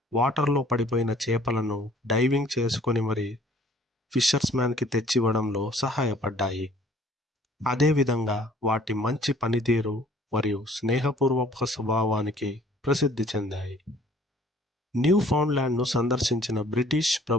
వాటర్లో పడిపోయిన చేపలను డైవింగ్ చేసుకొని మరి ఫిషర్స్ మ్యాన్కి తెచ్చివ్వడంలో సహాయపడ్డాయి. అదేవిధంగా వాటి మంచి పనితీరు మరియు స్నేహపూర్వక స్వభావానికి ప్రసిద్ధి చెందాయి. న్యూ ఫౌండ్లాండ్ను సందర్శించిన బ్రిటిష్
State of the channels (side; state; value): both; normal; correlation 0.56